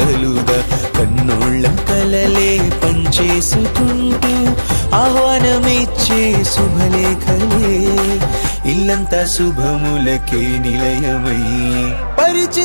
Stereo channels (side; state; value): both; inverted; correlation -1.00